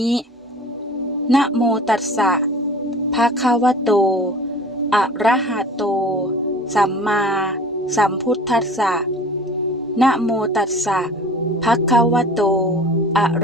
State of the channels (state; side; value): normal; both; correlation 0.43